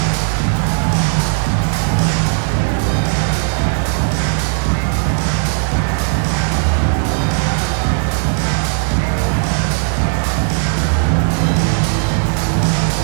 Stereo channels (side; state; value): left; silent; 63 dB below the other